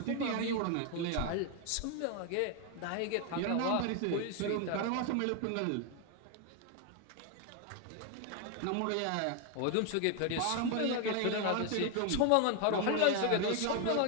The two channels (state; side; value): different; both; correlation 0.01